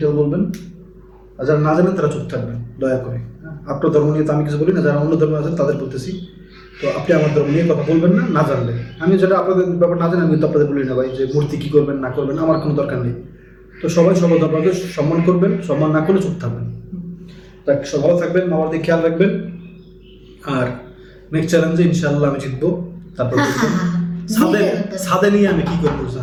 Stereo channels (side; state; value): both; identical; correlation 1.00